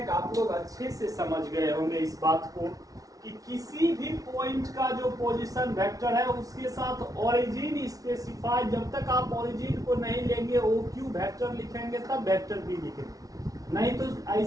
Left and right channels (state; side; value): late; left; 0.18 ms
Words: कि आप लोग अच्छे से समझ गए होंगे इस बात को कि किसी भी पॉइंट का जो पोजीशन वेक्टर है उसके साथ ओरिजिन स्पेसिफाई, जब तक आप ओरिजिन को नहीं लेंगे OQ वेक्टर लिखेंगे तब वेक्टर B लिखेंगे, नहीं तो